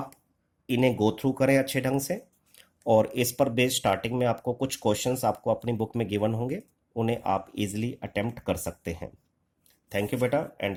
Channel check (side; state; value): both; identical; correlation 1.00